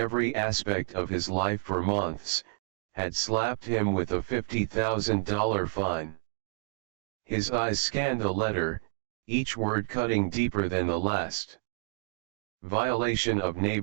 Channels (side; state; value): left; silent; digital silence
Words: aspect of his life for months, had slapped him with a $50,000 fine. His eyes scanned the letter, each word cutting deeper than the last. Violation of